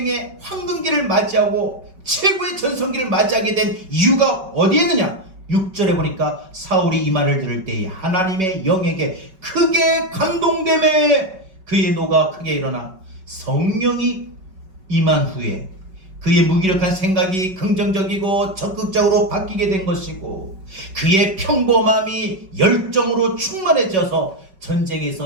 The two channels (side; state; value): left; late; 5.3 ms